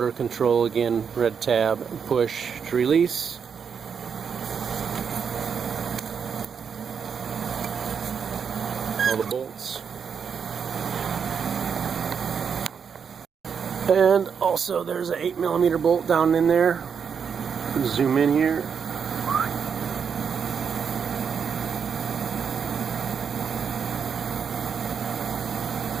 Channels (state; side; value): quieter; left; 6.8 dB